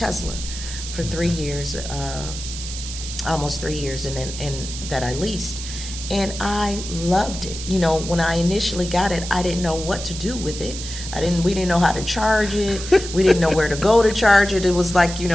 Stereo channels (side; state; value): right; noise; hiss, 9 dB below the sound